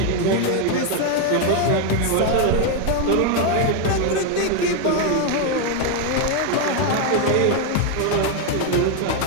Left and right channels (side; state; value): both; different; correlation 0.01